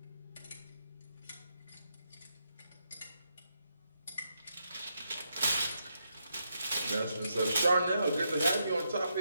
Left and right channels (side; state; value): both; inverted; correlation -0.81